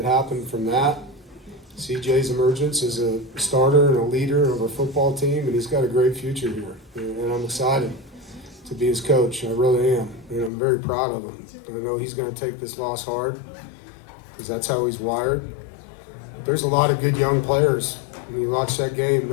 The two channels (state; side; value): drops out; right; at 10.5 s